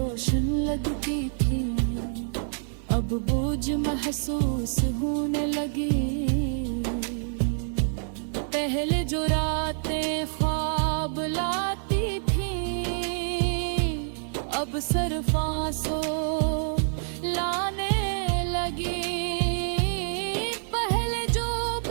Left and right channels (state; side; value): silent; left; digital silence